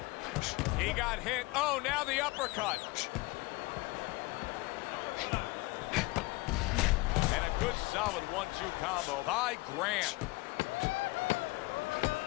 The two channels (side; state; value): right; quieter; 23.1 dB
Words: He got hit. Oh, now the uppercut. And a good solid 1-2 combo by Grant.